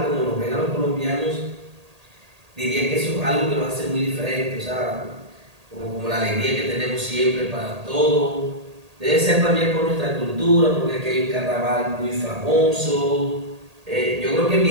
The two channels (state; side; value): late; left; 1.8 ms